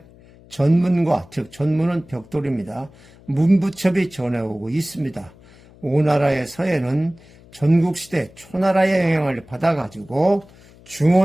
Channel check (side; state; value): left; noise; hum, 25 dB below the sound